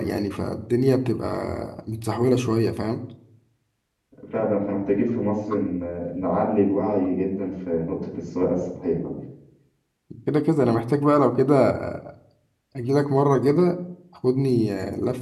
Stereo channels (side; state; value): both; identical; correlation 1.00